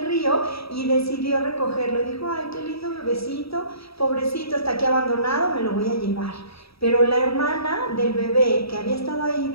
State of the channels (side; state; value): right; late; 0.77 ms